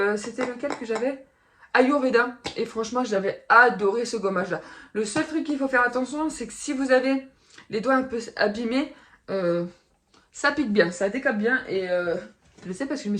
c'était lequel que j'avais? Ayurveda. Et franchement j'avais adoré ce gommage là. Le seul truc qu'il faut faire attention c'est que si vous avez les doigts un peu abîmés, ça pique bien, ça décape bien et je le sais parce que je me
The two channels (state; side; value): identical; both; correlation 1.00